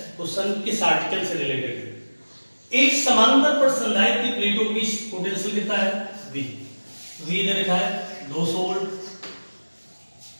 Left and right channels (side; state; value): both; inverted; correlation -1.00